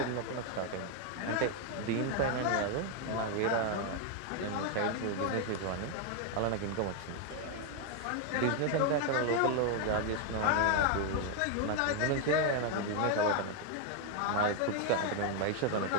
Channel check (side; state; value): both; different; correlation 0.01